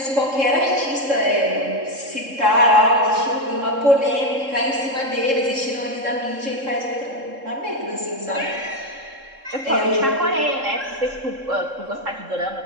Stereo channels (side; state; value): left; late; 3.7 ms